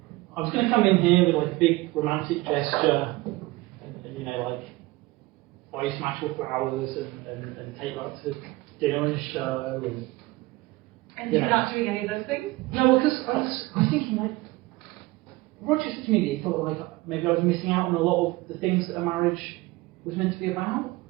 I was going to come in here with like a big romantic gesture, and you know, like buy you some actual flowers and take you out to dinner and a show And you're not doing any of those things? No, because I was thinking like Roger said to me that he thought like maybe I was missing out on a lot of the things that a marriage was meant to be about.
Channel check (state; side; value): quieter; left; 20.7 dB